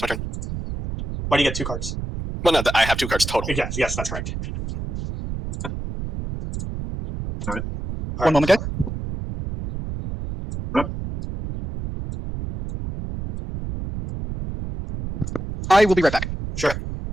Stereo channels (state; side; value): noise; right; rumble, 6 dB below the sound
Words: my turn. Why do you get 2 cards? Well, no, I have 2 cards total. Yes, that's correct. All right. One moment, guys. I will be right back. Sure.